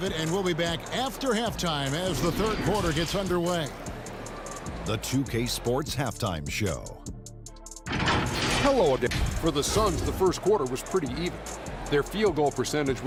And we'll be back after halftime as the third quarter gets underway. The 2K Sports Halftime Show. Hello again. For the Suns, the first quarter was pretty even. Their field goal percentage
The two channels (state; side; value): identical; both; correlation 1.00